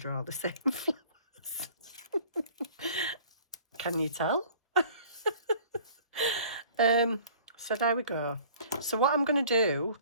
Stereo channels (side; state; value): both; inverted; correlation -0.50